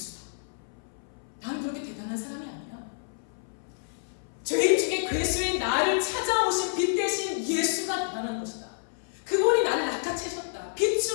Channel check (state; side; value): silent; right; 59 dB below the other